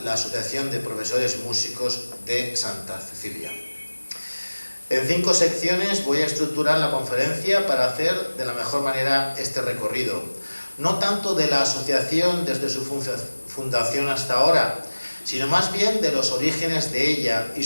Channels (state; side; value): inverted; both; correlation -1.00